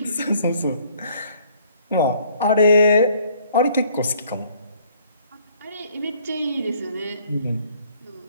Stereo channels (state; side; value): inverted; both; correlation -0.60